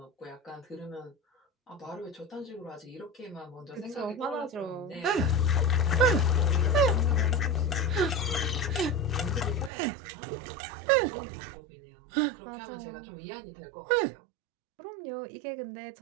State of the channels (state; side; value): drops out; left; at 9.7 s